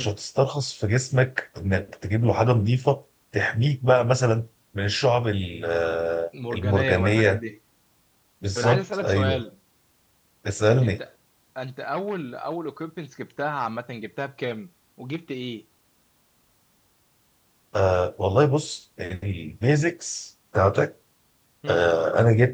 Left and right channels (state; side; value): identical; both; correlation 1.00